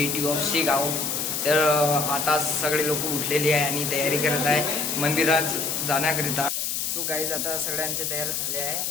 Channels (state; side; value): noise; left; hiss, 1 dB below the sound